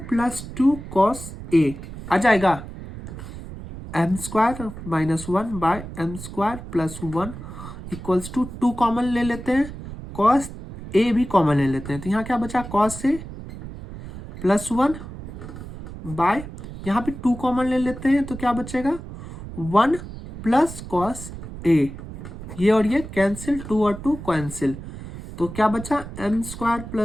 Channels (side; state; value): right; noise; rumble, 11 dB below the sound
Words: plus 2 cos A आ जाएगा। M square minus 1 by m square plus 1 equals to 2 common ले लेते हैं, कॉस ए भी कॉमन ले लेते हैं, तो यहाँ क्या बचा कॉस ए प्लस 1 बाय यहाँ पे 2 कॉमन ले लेते हैं, तो क्या बचेगा 1 प्लस कॉस ए, ये और ये कैंसिल, 2 और 2 कैंसिल, तो क्या बचा m square